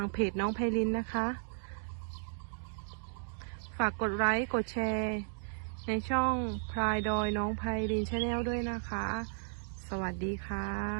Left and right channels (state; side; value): silent; left; digital silence